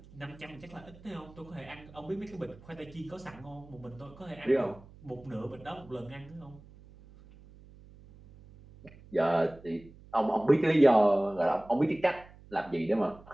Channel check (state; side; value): noise; right; hum, 22 dB below the sound